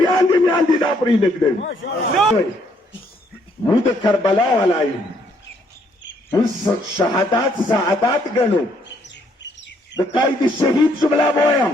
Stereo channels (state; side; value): normal; both; correlation 0.69